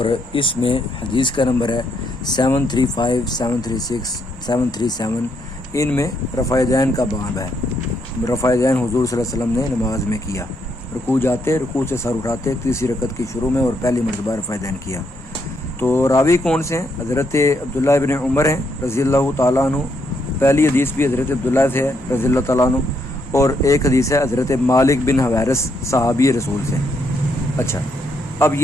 اس میں حدیث کا نمبر ہے 735 736 737۔ ان میں رفع دین کا باب ہے۔ رفع دین حضور صلی اللہ علیہ وسلم نے نماز میں کیا، رکوع جاتے، رکوع سے سر اٹھاتے، تیسری رکعت کی شروع میں اور پہلی مرتبہ رفع دین کیا۔ تو راوی کون سے ہیں؟ حضرت عبداللہ ابن عمر ہیں رضی اللہ تعالیٰ عنہ۔ پہلی حدیث بھی حضرت عبداللہ سے ہے رضی اللہ تعالیٰ عنہ، اور ایک حدیث ہے حضرت مالک بن حویرث صحابی رسول سے۔ اچھا، اب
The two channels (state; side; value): normal; both; correlation 0.76